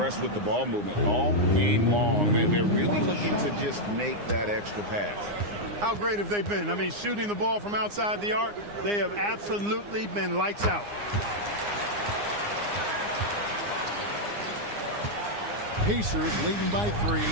with the ball movement all game long. They're really looking to just make that extra pass. How great have they been? I mean, shooting the ball from outside the arc, they have absolutely been lights out. Pacers leading by 3.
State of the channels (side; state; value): left; late; 9.7 ms